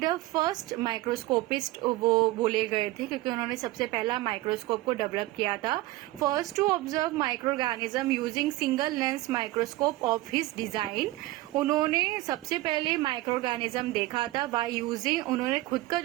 फर्स्ट माइक्रोस्कोपिस्ट वो बोले गए थे क्योंकि उन्होंने सबसे पहला माइक्रोस्कोप को डेवलप किया था। First to observe micro organism using single lens microscope of his design. उन्होंने सबसे पहले माइक्रो ऑर्गेनिज्म देखा था बाय यूजिंग, उन्होंने खुद का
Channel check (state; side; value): quieter; left; 18.4 dB